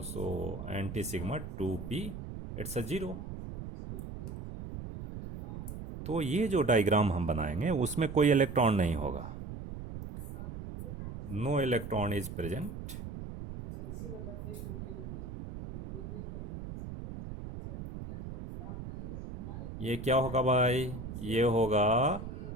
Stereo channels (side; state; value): right; noise; rumble, 8 dB below the sound